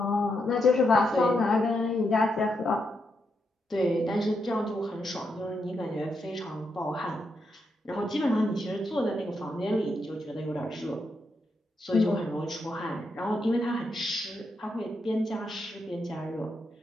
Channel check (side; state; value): both; normal; correlation 0.82